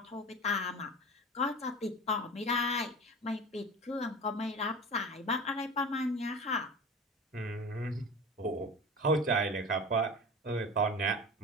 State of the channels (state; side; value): normal; both; correlation 0.33